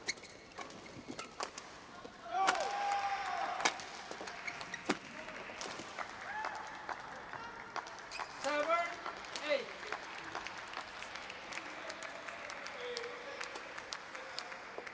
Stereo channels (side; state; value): both; identical; correlation 1.00